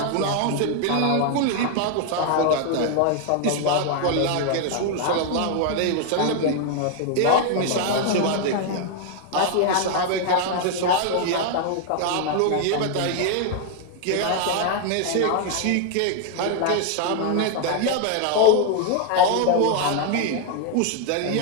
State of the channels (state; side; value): different; both; correlation 0.00